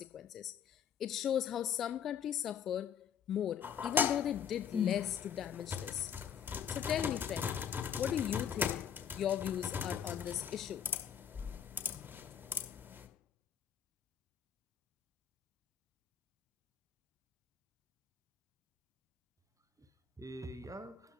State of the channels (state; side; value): quieter; right; 8.1 dB